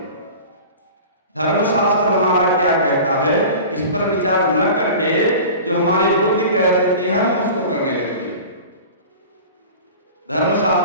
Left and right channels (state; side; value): inverted; both; correlation -0.37